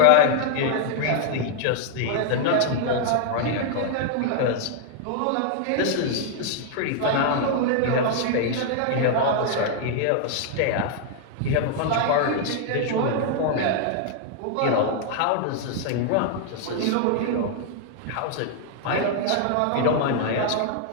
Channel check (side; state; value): both; different; correlation 0.00